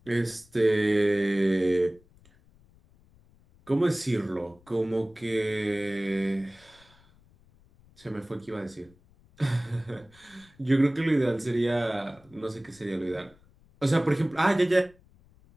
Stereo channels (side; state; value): left; noise; rumble, 29 dB below the sound